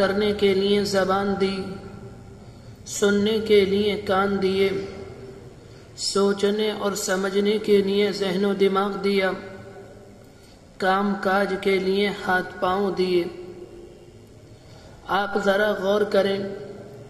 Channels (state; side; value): identical; both; correlation 1.00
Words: کے لیے زبان دی، سننے کے لیے کان دیے، سوچنے اور سمجھنے کے لیے ذہن و دماغ دیا، کام کاج کے لیے ہاتھ پاؤں دیے۔ آپ ذرا غور کریں،